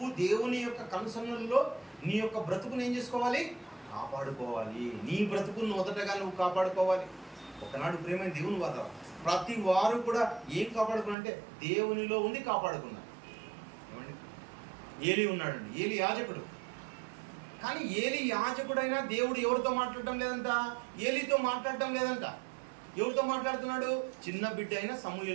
దేవుని యొక్క కనుసన్నల్లో నీ యొక్క బ్రతుకుని ఏం చేసుకోవాలి? కాపాడుకోవాలి. నీ బ్రతుకును మొదటగా నువ్వు కాపాడుకోవాలి. ఒకనాడు ప్రేమైన దేవుని వాద ప్రతి వారు కూడా ఏం కాపాడుకున్నారంటే దేవునిలో ఉండి కాపాడుకున్నారు. ఏమండి? ఏలి ఉన్నాడండి, ఏలి యాజకుడు. కానీ ఏలి యాజకుడైనా దేవుడు ఎవరితో మాట్లాడటం లేదంట? ఏలితో మాట్లాడటం లేదంట. ఎవరితో మాట్లాడుతున్నాడు? చిన్న బిడ్డ అయిన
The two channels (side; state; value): left; drops out; at 11.2 s